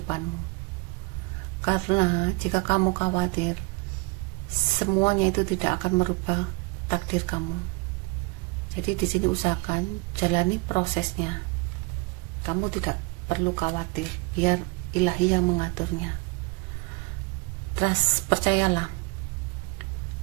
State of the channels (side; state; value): left; quieter; 28.4 dB